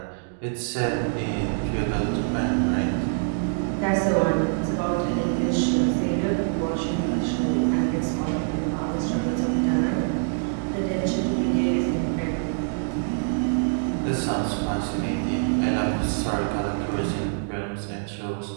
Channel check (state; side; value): silent; left; digital silence